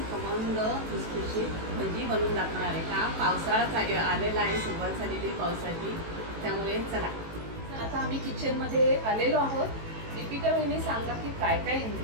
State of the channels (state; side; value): late; left; 18 ms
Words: खमंग खुसखुशीत भजी बनवून दाखवणार आहे। का पावसाळा आलेला आहे, सुरुवात झालेली पावसाची, त्यामुळे चला आता आम्ही किचनमध्ये आलेलो आहोत। दीपिका वहिनी सांगा की काय काय